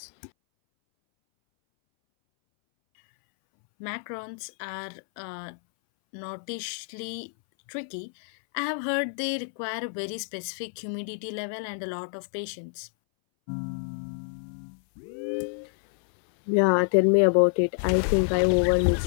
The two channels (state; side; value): silent; right; 60 dB below the other